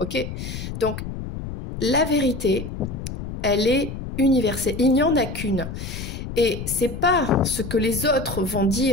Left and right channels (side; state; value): left; noise; rumble, 8 dB below the sound